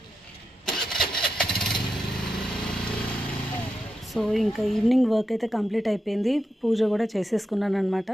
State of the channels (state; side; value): normal; both; correlation 0.87